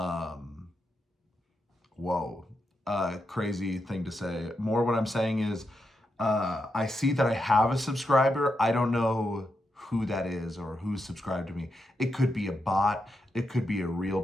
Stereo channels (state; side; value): normal; both; correlation 0.85